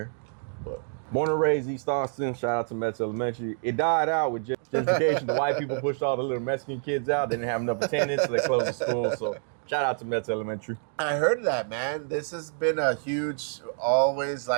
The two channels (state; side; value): silent; left; digital silence